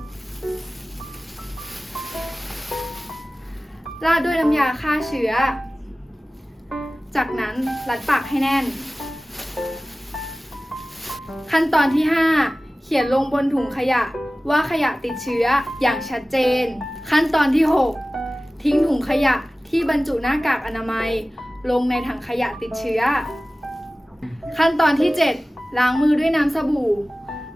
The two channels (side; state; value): both; normal; correlation 0.97